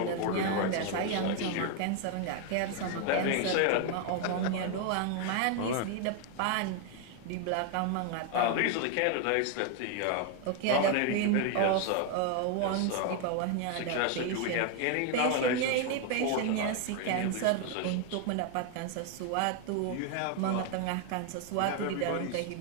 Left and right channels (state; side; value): different; both; correlation 0.01